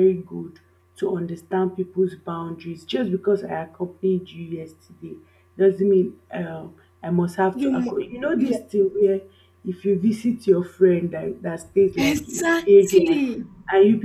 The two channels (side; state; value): both; identical; correlation 1.00